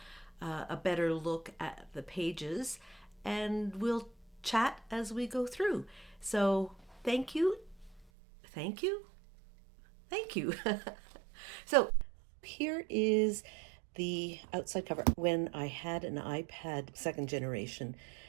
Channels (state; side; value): drops out; left; at 8.1 s